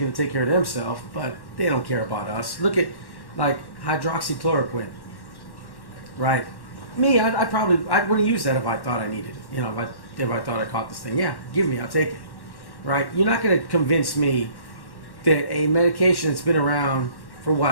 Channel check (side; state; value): right; late; 1.1 ms